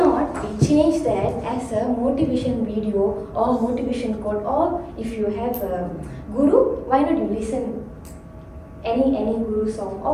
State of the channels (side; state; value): both; identical; correlation 1.00